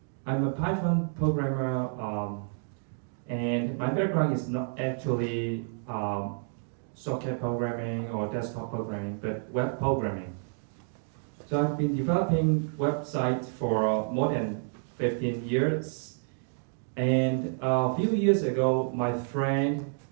I'm a Python programmer, and my background is not actually socket programming or desktop programming, but web programming. So I've been developing websites for more than 15 years. And a few years ago, my friend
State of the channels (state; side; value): silent; left; 58 dB below the other